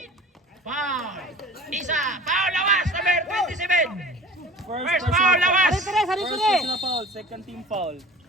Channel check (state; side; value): normal; both; correlation 0.42